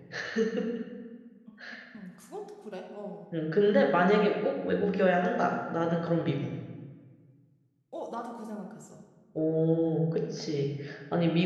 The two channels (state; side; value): identical; both; correlation 1.00